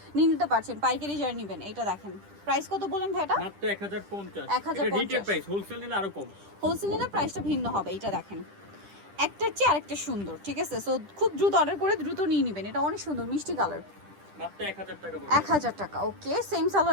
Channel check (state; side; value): late; left; 10 ms